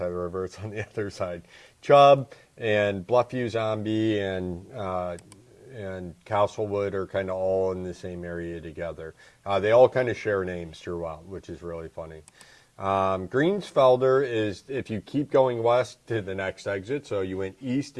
of the river. It's on the other side. Chubb and Bluffview Zombie and Castlewood are kind of all in the same area together. They all kind of share names throughout, which is really funny. Greensfelder is, if you keep going west to the next exit, so you went east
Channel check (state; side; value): identical; both; correlation 1.00